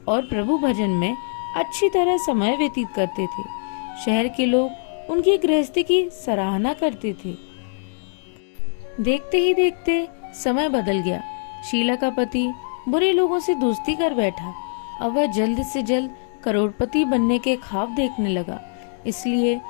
और प्रभु भजन में अच्छी तरह समय व्यतीत करते थे। शहर के लोग उनकी गृहस्थी की सराहना करते थे। देखते ही देखते समय बदल गया। शीला का पति बुरे लोगों से दोस्ती कर बैठा। अब वह जल्द से जल्द करोड़पति बनने के ख्वाब देखने लगा, इसलिए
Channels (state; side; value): silent; right; digital silence